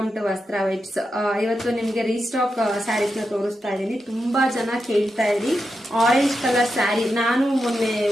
to ವಸ್ತ್ರ ವೈಬ್ಸ್. ಇವತ್ತು ನಿಮಗೆ ರೀಸ್ಟಾಕ್ ಸ್ಯಾರೀಸ್ ನ ತೋರಿಸ್ತಾ ಇದ್ದೀನಿ. ತುಂಬಾ ಜನ ಕೇಳ್ತಾ ಇದ್ರಿ ಆರೆಂಜ್ ಕಲರ್ ಸ್ಯಾರಿ. ನಾನು ಮೊನ್ನೆ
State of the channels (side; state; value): both; normal; correlation 0.87